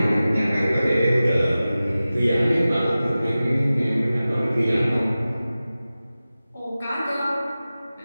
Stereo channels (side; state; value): both; inverted; correlation -0.96